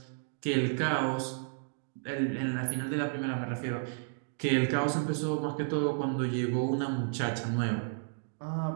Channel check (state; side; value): silent; left; digital silence